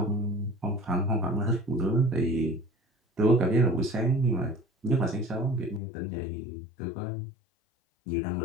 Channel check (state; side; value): drops out; right; at 5.8 s